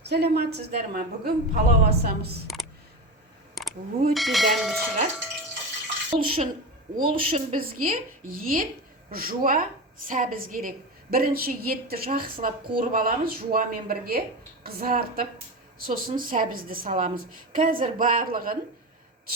Саламатсыздар ма? Бүгін палау асамыз. Өте дәмді шығар. Ол үшін бізге ет, жуа, сәбіз керек. Бірінші етті жақсылап қуырып аламыз, жуамен бірге қызартып, сосын сәбізді саламыз. Қазір барлығын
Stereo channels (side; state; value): both; normal; correlation 0.23